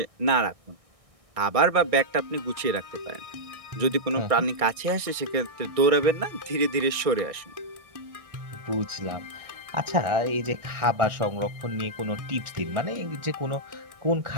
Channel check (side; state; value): left; late; 1.6 ms